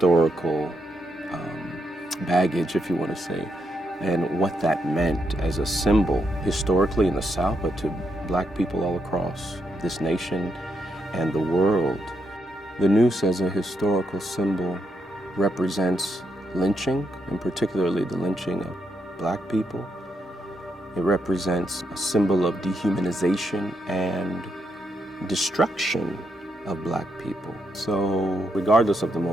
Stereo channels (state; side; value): normal; both; correlation 0.80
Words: baggage, if you want to say, and what that meant as a symbol historically in the South, but to Black people all across this nation and the world. The noose as a historical symbol represents lynching, and particularly the lynching of Black people. It represents a symbol of dehumanization and destruction of Black people. So regardless of the